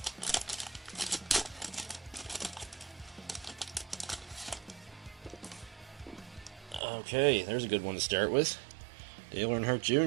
Okay, there's a good one to start with. Dale Earnhardt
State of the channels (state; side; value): drops out; left; at 6.8 s